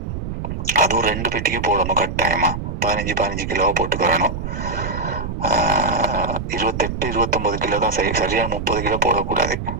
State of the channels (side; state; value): right; noise; rumble, 5 dB below the sound